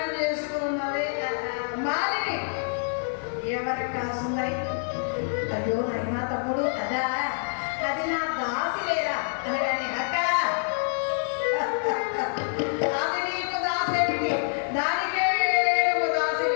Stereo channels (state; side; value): silent; right; digital silence